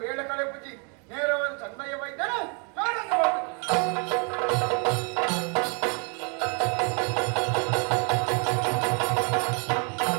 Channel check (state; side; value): quieter; left; 37.1 dB